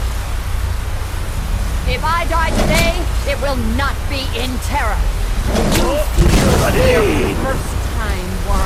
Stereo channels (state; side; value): identical; both; correlation 1.00